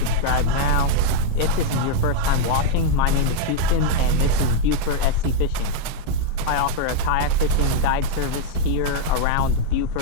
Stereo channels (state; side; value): different; both; correlation -0.01